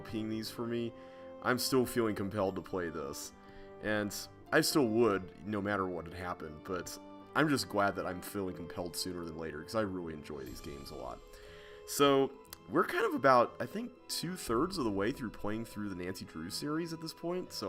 these for me, I'm still feeling compelled to play this. And I still would, no matter what had happened, but I'm just glad that I'm feeling compelled sooner than later, because I really enjoy these games a lot. So, we're kind of about, I think, 2/3 of the way through playing through the Nancy Drew series at this point,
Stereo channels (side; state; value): both; identical; correlation 1.00